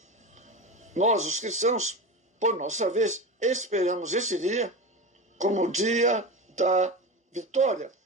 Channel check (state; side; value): normal; both; correlation 0.25